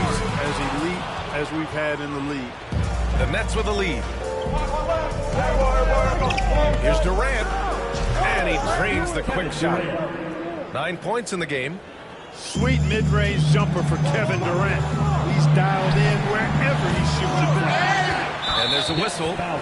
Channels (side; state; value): both; identical; correlation 1.00